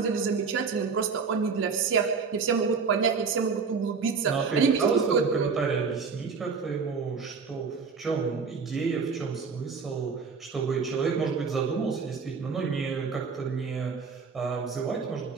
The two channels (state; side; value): quieter; left; 5.3 dB